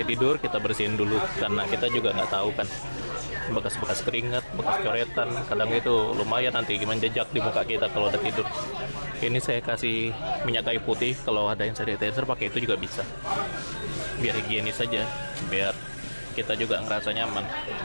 tidur kita bersihin dulu karena kita juga nggak tahu kan, bekas-bekas keringat, bekas coretan, kadang itu lumayan nanti menjejak di muka kita kalau udah tidur. Ini saya kasih minyak kayu putih, kalau ada yang sanitizer pakai itu juga bisa, biar higienis saja, biar kita juga ngerasa nyaman.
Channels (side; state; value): both; inverted; correlation -1.00